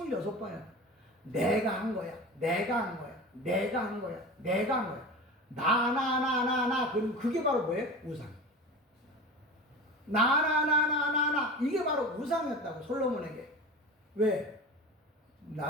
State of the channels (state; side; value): normal; both; correlation 0.32